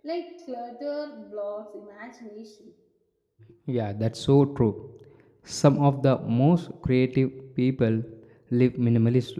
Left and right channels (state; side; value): identical; both; correlation 1.00